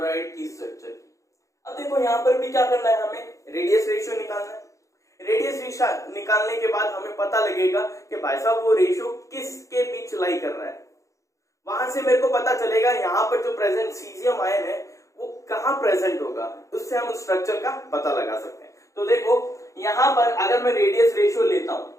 की स्ट्रक्चर की। अब देखो यहाँ पर भी क्या करना है, हमें रेडियस रेशियो निकालना है। रेडियस रेशियो निकालने के बाद हमें पता लगेगा कि भाई साहब वो रेशियो किसके बीच लाई कर रहा है। वहां से मेरे को पता चलेगा यहाँ पर जो प्रेजेंट सीजियम आयन है वो कहाँ प्रेजेंट होगा, उससे हम स्ट्रक्चर का पता लगा सकते हैं। तो देखो यहाँ पर अगर मैं रेडियस रेशियो लेता हूं,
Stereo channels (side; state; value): right; late; 0.15 ms